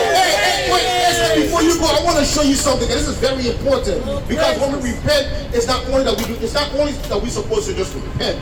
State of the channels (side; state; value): both; identical; correlation 1.00